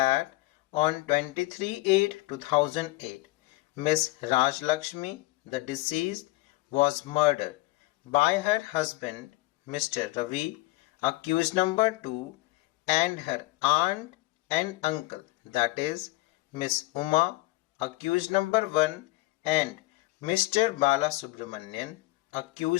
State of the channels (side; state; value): right; quieter; 20.9 dB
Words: on 23/8/2008, Miss Rajlakshmi, the deceased, was murdered by her husband, Mr. Ravi, accused number 2, and her aunt and uncle, that is, Miss Uma, accused number 1, and Mr. Balasubramanian,